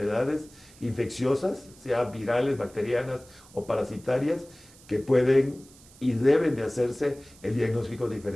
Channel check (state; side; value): noise; right; hiss, 24 dB below the sound